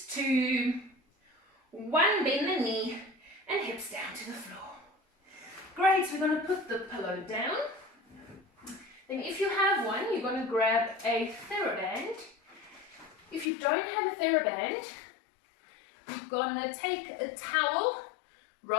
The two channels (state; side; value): drops out; right; at 13.5 s